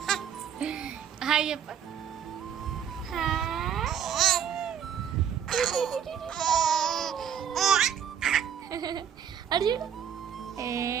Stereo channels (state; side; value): quieter; left; 8.5 dB